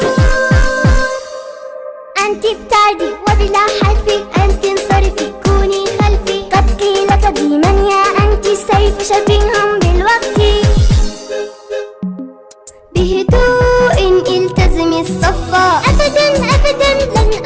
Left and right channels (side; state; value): both; identical; correlation 1.00